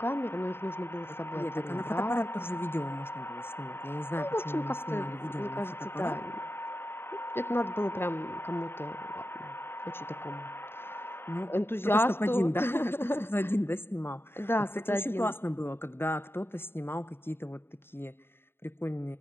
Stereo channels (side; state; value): right; late; 0.11 ms